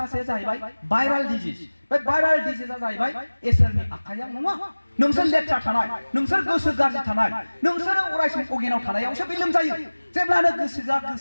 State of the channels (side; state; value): both; inverted; correlation -1.00